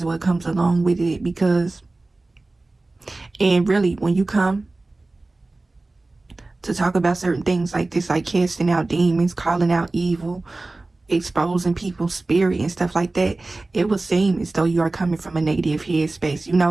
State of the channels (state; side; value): quieter; left; 3.1 dB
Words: what comes along with it, because, and really, when you come to talk about certain things like this, like casting out demons, calling out evil, exposing people's spirit and stuff like that, it will seem as though you are coming from a negative headspace, you